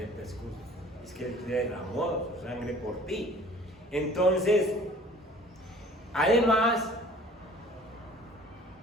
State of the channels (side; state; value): both; normal; correlation 0.49